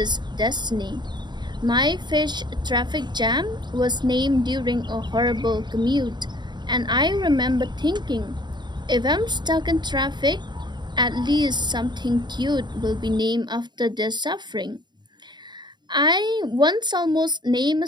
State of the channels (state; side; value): late; left; 0.21 ms